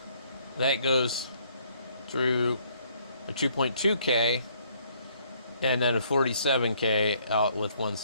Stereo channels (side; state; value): both; inverted; correlation -0.65